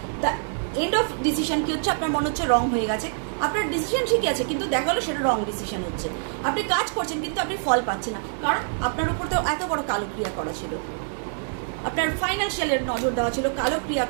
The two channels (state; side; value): silent; left; digital silence